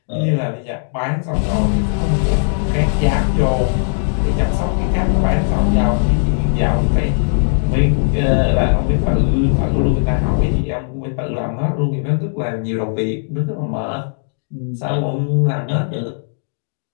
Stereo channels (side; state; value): right; silent; digital silence